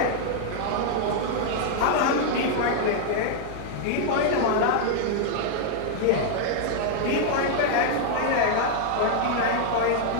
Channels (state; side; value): different; both; correlation 0.00